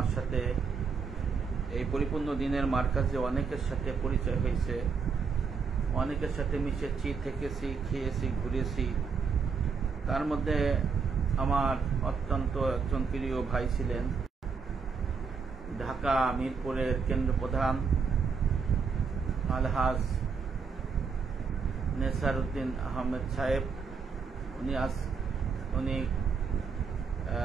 সাথে এই পরিপূর্ণ দ্বীনের মার্কাজে অনেকের সাথে পরিচয় হয়েছে, অনেকের সাথে মিশেছি, থেকেছি, খেয়েছি, ঘুরেছি। তার মধ্যে আমার অত্যন্ত একজন প্রিয় ভাই ছিলেন ঢাকা মিরপুরের কেন্দ্র প্রধান আলহাজ নেসারউদ্দিন আহমেদ সাহেব। উনি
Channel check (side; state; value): left; quieter; 5.5 dB